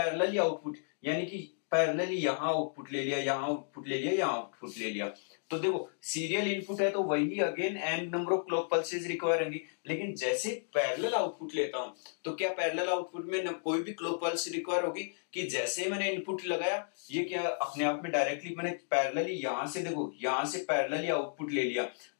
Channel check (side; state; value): right; silent; digital silence